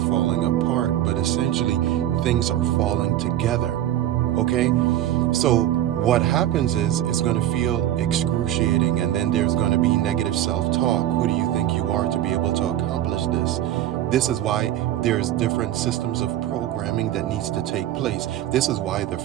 apart, but essentially things are falling together. Okay? So what happens is it's going to feel excruciating, and then there's going to be negative self-talk. Who do you think you are to be able to accomplish this? This is why there's different systems of programming that needs to take place. This is why the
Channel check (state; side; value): quieter; left; 12.4 dB